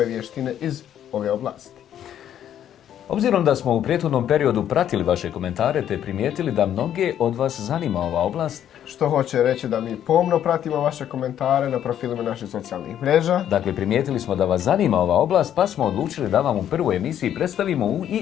vještine iz ove oblasti. Obzirom da smo u prethodnom periodu pratili vaše komentare te primijetili da mnoge od vas zanima ova oblast, Što hoće reći da mi pomno pratimo vaše komentare na profilima naših socijalnih mreža. dakle primijetili smo da vas zanima ova oblast, pa smo odlučili da vam u prvoj emisiji predstavimo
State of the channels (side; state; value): right; quieter; 10.4 dB